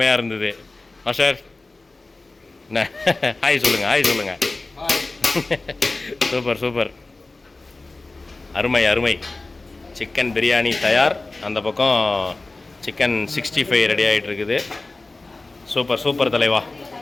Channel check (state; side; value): quieter; right; 3.3 dB